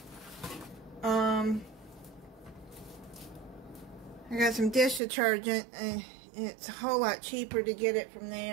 I got some dish detergent, and it's a whole lot cheaper to get it from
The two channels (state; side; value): drops out; left; at 5.0 s